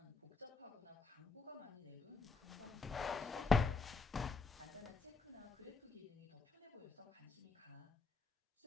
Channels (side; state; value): right; quieter; 4.3 dB